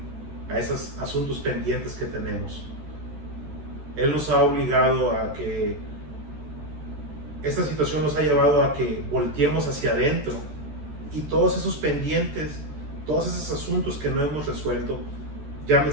a esos asuntos pendientes que tenemos. Él nos ha obligado a que esta situación nos ha llevado a que volteemos hacia adentro, y todos esos pendientes, todos esos asuntos que no hemos resuelto,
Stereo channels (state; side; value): late; left; 13 ms